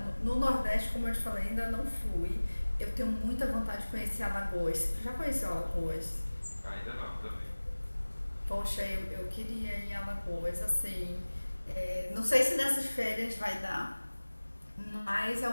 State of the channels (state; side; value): inverted; both; correlation -1.00